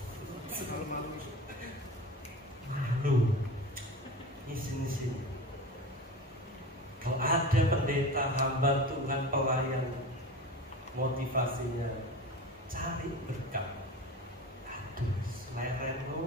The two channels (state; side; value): normal; both; correlation 0.32